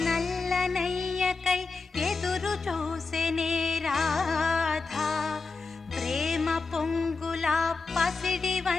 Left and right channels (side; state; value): right; quieter; 4.2 dB